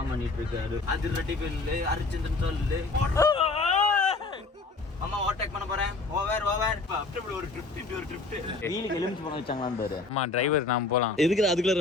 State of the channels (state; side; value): quieter; right; 3.7 dB